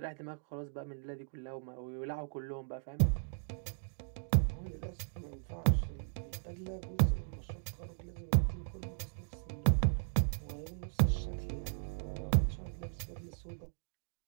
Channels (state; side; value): silent; left; digital silence